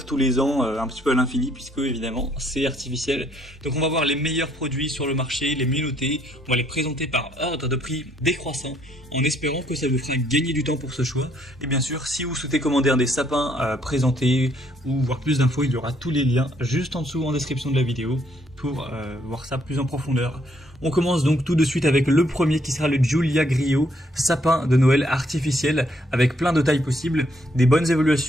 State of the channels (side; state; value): both; normal; correlation 0.69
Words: tous les ans un petit peu à l'infini, puisque évidemment c'est artificiel. Donc on va voir les meilleurs produits sur le marché, les mieux notés, on va les présenter par ordre de prix décroissant, en espérant que ça vous fera gagner du temps pour ce choix. Et bien sûr, si vous souhaitez commander un des sapins présentés ou voir plus d'infos, il y aura tous les liens juste en dessous en description de la vidéo pour voir ça plus en profondeur. On commence donc tout de suite avec le premier qui sera le Giulia Griot, sapin de Noël artificiel avec plein de tailles possibles, des bonnes